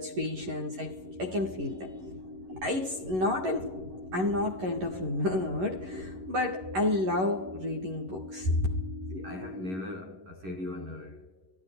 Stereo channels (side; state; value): left; late; 11 ms